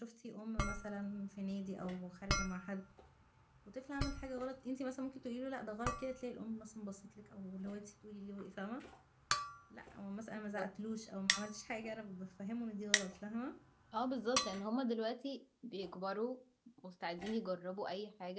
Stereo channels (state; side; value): identical; both; correlation 1.00